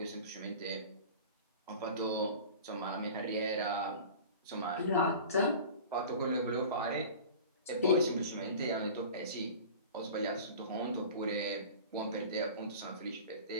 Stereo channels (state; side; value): inverted; both; correlation -0.38